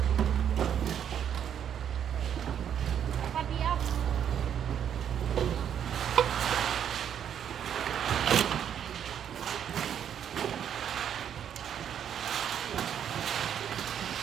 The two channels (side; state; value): left; quieter; 9.0 dB